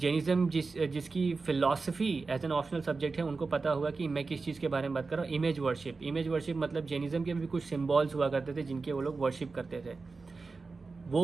जिसकी philosophy as an optional subject है, उनको पता होगा कि मैं किस चीज़ के बारे में बात कर रहा हूँ। इमेज वर्शिप, इमेज वर्शिप मतलब जैनिज़्म के भी कुछ सिम्बॉल्स हुआ करते थे जिनके वो लोग वर्शिप करते थे।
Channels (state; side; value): quieter; left; 4.1 dB